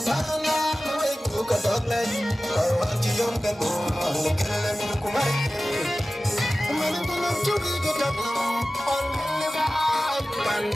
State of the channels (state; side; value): normal; both; correlation 0.96